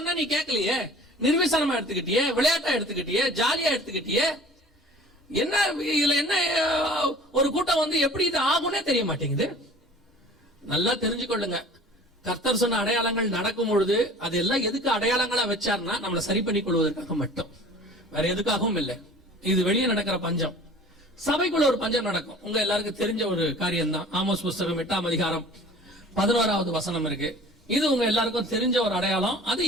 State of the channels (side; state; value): both; normal; correlation 0.45